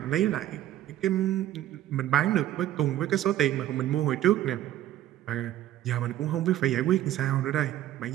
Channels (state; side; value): quieter; left; 12.9 dB